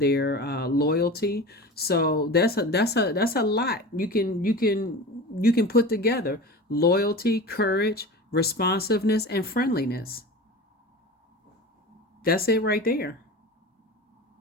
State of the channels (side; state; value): both; normal; correlation 0.32